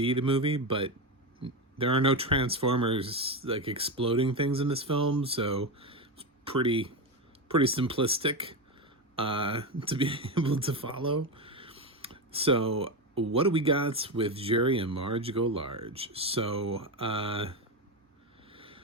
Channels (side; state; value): both; normal; correlation 0.14